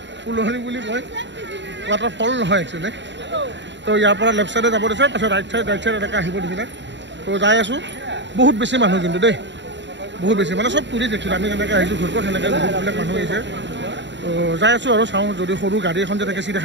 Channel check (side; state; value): left; late; 0.52 ms